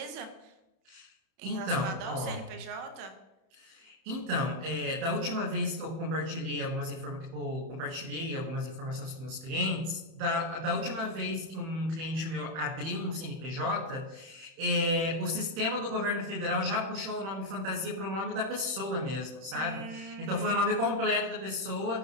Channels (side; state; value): left; late; 31 ms